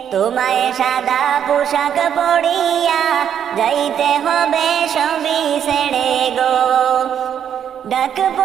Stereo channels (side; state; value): left; quieter; 8.9 dB